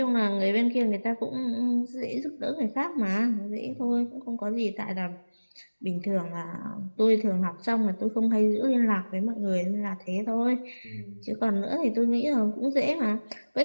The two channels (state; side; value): inverted; both; correlation -1.00